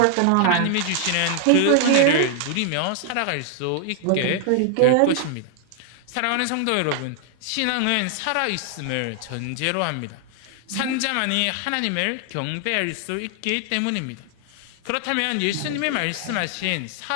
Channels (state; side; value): different; both; correlation 0.00